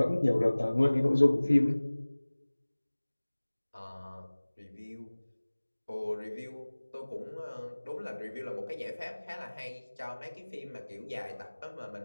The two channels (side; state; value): both; inverted; correlation -1.00